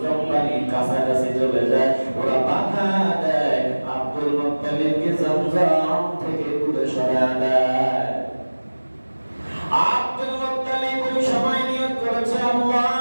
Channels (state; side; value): inverted; both; correlation -1.00